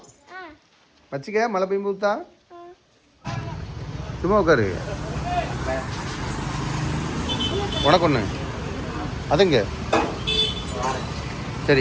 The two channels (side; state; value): both; identical; correlation 1.00